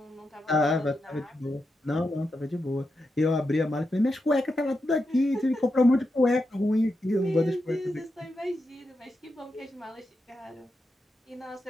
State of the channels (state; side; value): normal; both; correlation 0.87